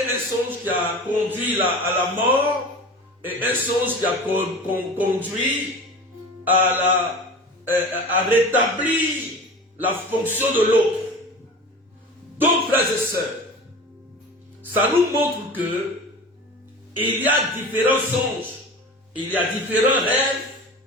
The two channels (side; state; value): both; normal; correlation 0.35